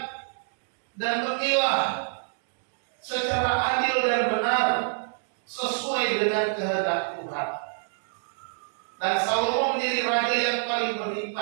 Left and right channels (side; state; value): left; silent; digital silence